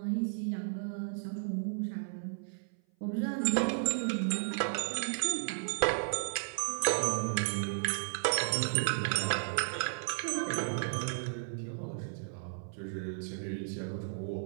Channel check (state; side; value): silent; left; 55 dB below the other